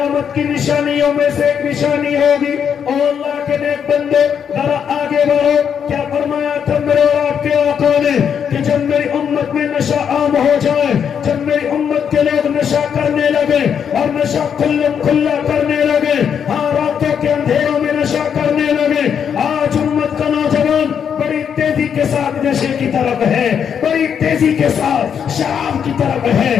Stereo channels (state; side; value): quieter; right; 7.7 dB